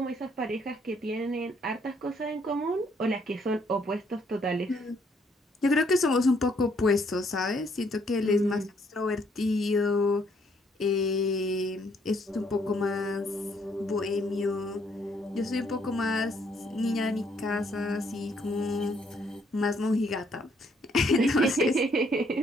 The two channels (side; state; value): both; normal; correlation 0.68